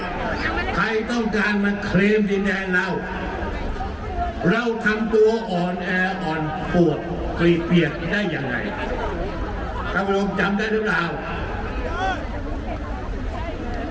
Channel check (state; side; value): identical; both; correlation 1.00